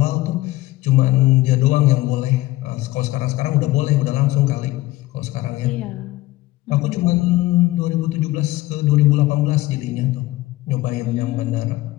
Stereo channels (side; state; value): right; quieter; 17.6 dB